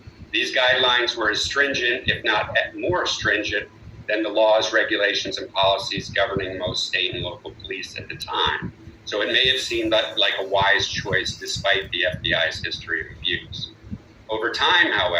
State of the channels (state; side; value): identical; both; correlation 1.00